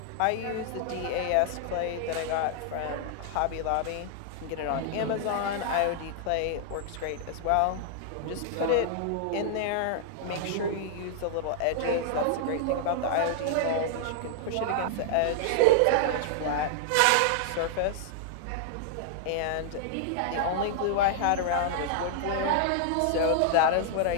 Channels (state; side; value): different; both; correlation -0.01